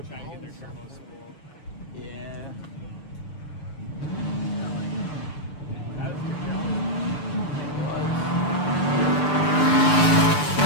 try to get their turbos spooled. Yeah.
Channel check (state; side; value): late; right; 6.8 ms